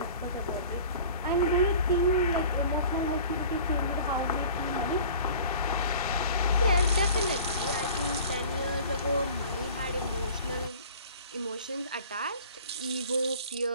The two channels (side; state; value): both; inverted; correlation -0.45